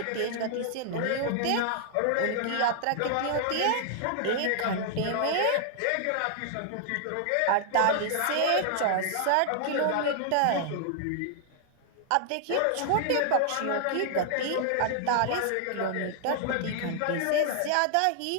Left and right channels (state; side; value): different; both; correlation 0.00